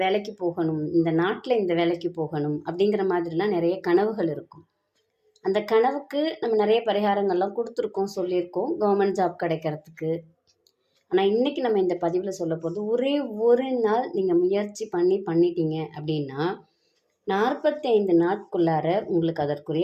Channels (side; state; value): both; identical; correlation 1.00